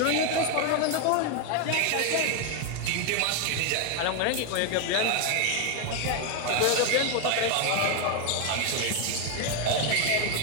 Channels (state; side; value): different; both; correlation 0.01